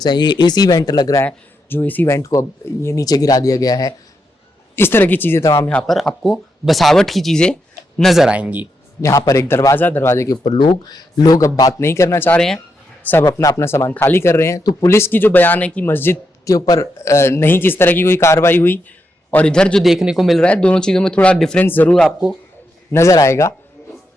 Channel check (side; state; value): both; normal; correlation 0.83